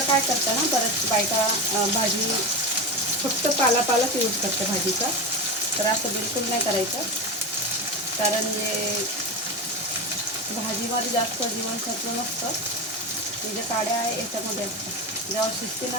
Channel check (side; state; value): both; normal; correlation 0.20